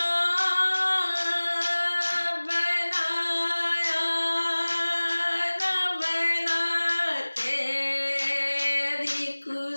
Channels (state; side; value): inverted; both; correlation -1.00